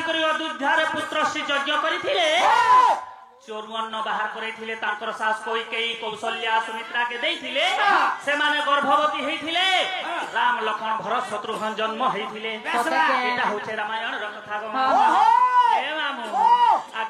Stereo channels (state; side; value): identical; both; correlation 1.00